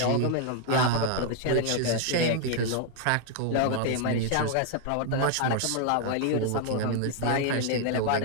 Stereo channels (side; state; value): both; different; correlation 0.00